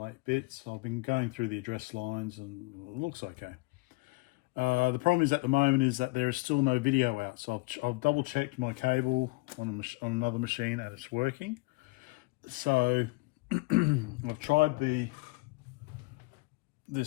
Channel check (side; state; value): right; quieter; 26.0 dB